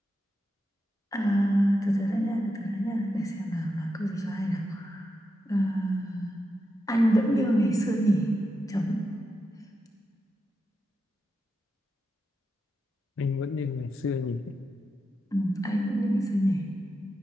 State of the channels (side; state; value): both; normal; correlation 0.87